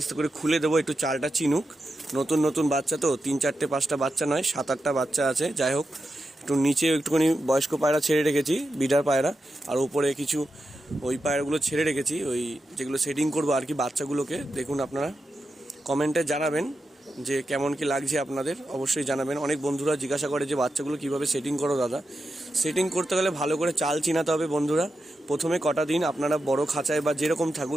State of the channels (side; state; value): both; normal; correlation 0.89